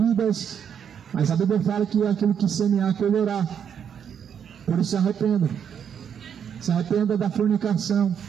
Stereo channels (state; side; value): quieter; left; 8.1 dB